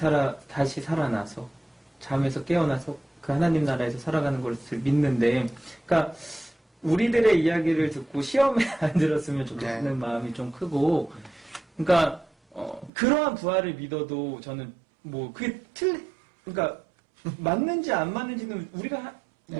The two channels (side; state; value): left; drops out; at 12.9 s